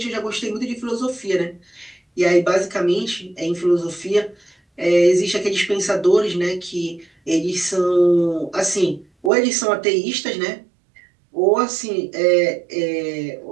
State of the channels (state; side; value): drops out; left; at 9.3 s